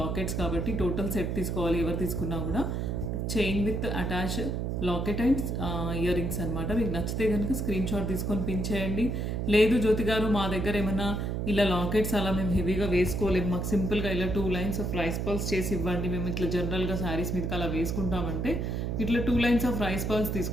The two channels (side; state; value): right; noise; hum, 1 dB below the sound